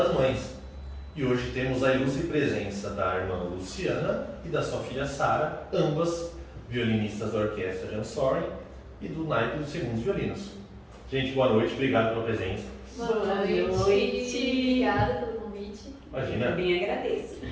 Mães. E hoje temos a ilustre presença da irmã Luciana e da sua filha Sara, ambas violinistas da Orquestra Jansori e do naipe dos segundos violinos. Gente, boa noite, obrigado pela presença. Boa noite. Obrigada pelo convite. Imagina. Eu bem agradeço.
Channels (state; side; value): identical; both; correlation 1.00